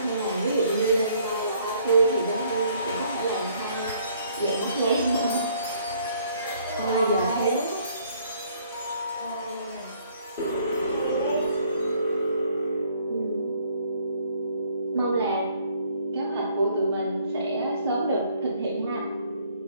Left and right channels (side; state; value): both; inverted; correlation -0.64